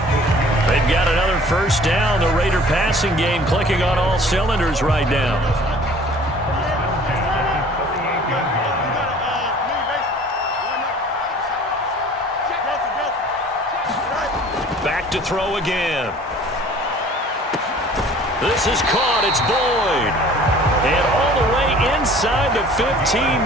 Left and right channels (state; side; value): normal; both; correlation 0.50